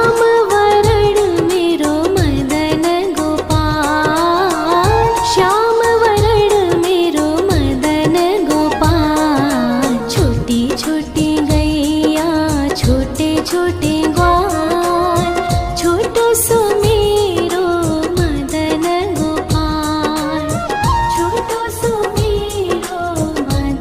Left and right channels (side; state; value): both; identical; correlation 1.00